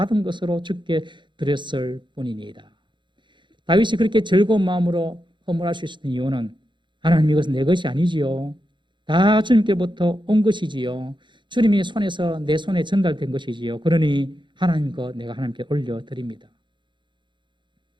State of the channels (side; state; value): left; late; 0.23 ms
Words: 것으로 주께 드렸을 뿐이니이다. 다윗이 그렇게 즐거운 마음으로 헌물할 수 있었던 이유는 하나님, 이것은 내 것이 아니지요. 다 주님께부터 온 것이지요. 주님의 손에서 내 손에 전달된 것이지요. 그러니 하나님 것 내가 하나님께 올려드립니다.